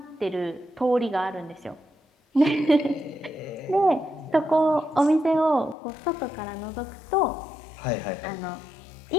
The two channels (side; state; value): right; drops out; at 5.8 s